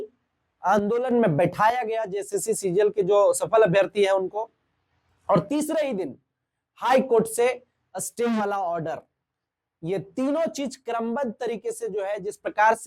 आंदोलन में बैठाया गया जेएसएससी सीजीएल के जो सफल अभ्यर्थी हैं उनको, और तीसरे ही दिन हाई कोर्ट से स्टे वाला ऑर्डर। ये तीनों चीज क्रमबद्ध तरीके से जो है जिस प्रकार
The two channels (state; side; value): identical; both; correlation 1.00